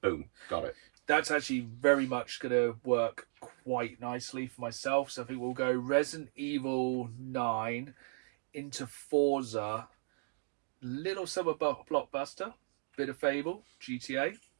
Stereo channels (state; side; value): silent; left; digital silence